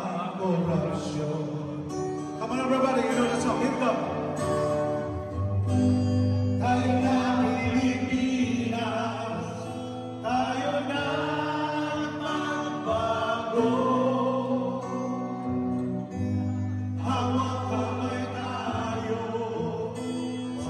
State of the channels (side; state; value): both; identical; correlation 1.00